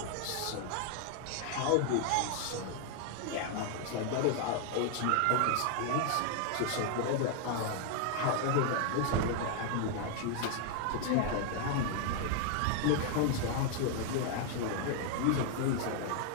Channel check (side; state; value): both; different; correlation 0.00